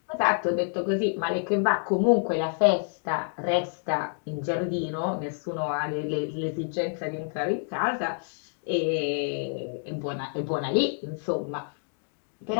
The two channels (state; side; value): silent; right; digital silence